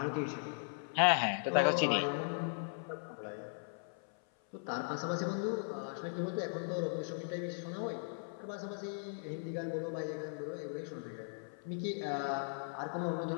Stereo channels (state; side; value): silent; right; 52 dB below the other